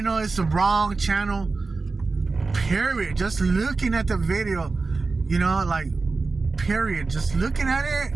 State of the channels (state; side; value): quieter; left; 3.9 dB